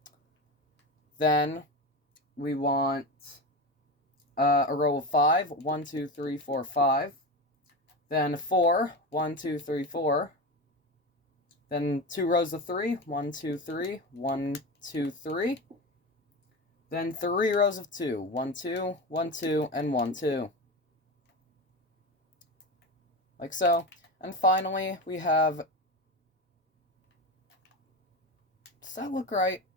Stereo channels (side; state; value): both; normal; correlation 0.22